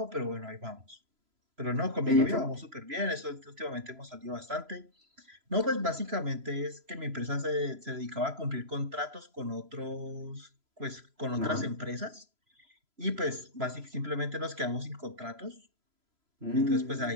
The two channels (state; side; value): late; left; 3.0 ms